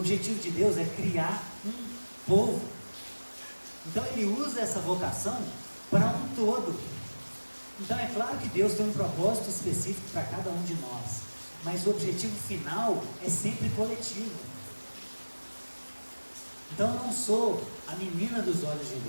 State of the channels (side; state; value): both; inverted; correlation -1.00